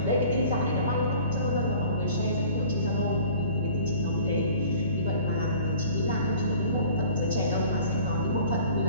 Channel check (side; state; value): both; inverted; correlation -0.48